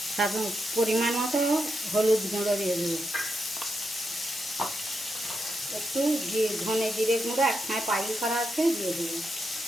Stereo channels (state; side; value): normal; both; correlation 0.84